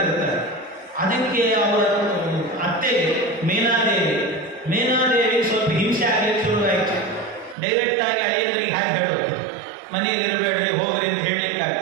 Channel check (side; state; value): left; drops out; at 7.6 s